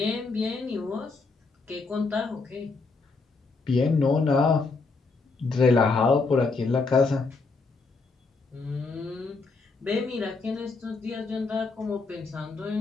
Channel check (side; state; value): right; quieter; 4.0 dB